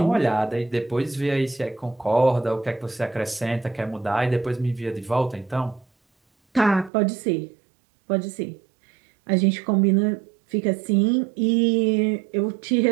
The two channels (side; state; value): left; drops out; at 6.9 s